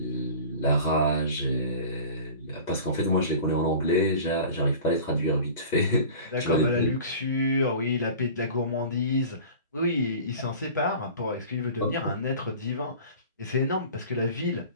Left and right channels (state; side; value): inverted; both; correlation -0.40